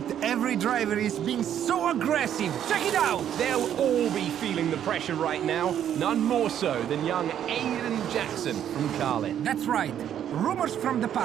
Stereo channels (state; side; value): quieter; left; 10.0 dB